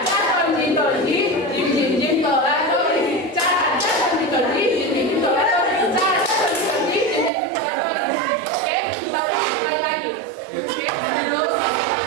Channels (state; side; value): drops out; left; at 7.3 s